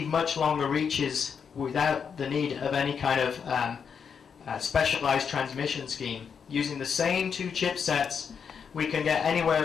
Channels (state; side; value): quieter; right; 6.7 dB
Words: much longer reaches without the need of any kind of specialized transmission scheme. Using the same 2 chipsets, we can get anywhere